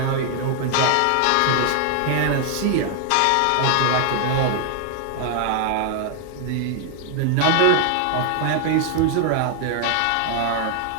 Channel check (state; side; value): different; both; correlation 0.00